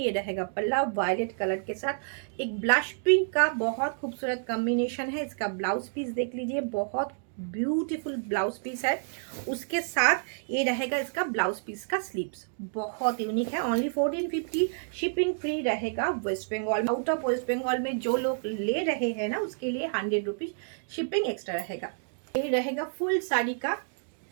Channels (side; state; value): left; silent; digital silence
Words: रहेगा पल्ला वायलेट कलर के साथ एक ब्लश पिंक का बहुत खूबसूरत कॉम्बिनेशन है। इसका ब्लाउज पीस देख लीजिए, बहुत ब्यूटीफुल ब्लाउज पीस है। उसके साथ ये रहेगा इसका ब्लाउज पीस का स्लीव्स, बहुत यूनिक है। ओनली 1450। शिपिंग फ्री रहेगा वेस्ट बंगाल। आउट ऑफ वेस्ट बंगाल में जो लोग ले रहे हैं ना, उसके लिए 100 रुपीज शिपिंग एक्स्ट्रा रहेगा। ये रहेगा फुल साड़ी का